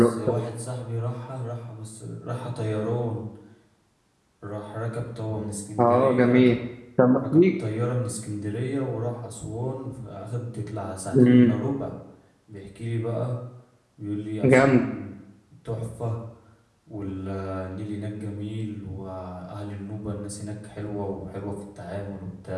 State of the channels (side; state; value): both; identical; correlation 1.00